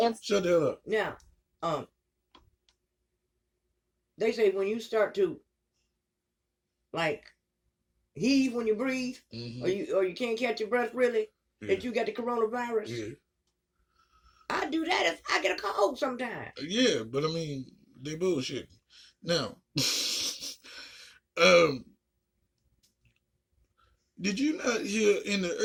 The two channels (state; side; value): identical; both; correlation 1.00